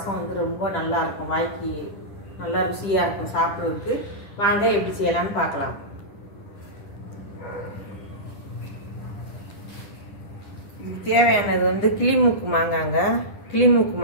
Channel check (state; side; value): late; right; 10 ms